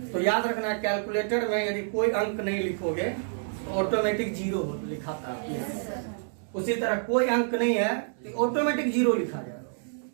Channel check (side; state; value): left; silent; digital silence